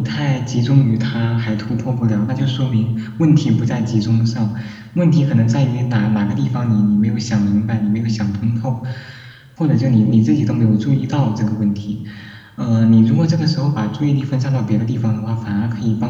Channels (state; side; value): identical; both; correlation 1.00